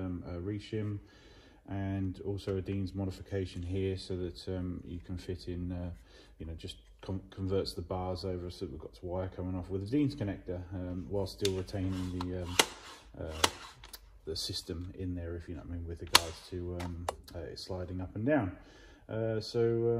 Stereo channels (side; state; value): both; identical; correlation 1.00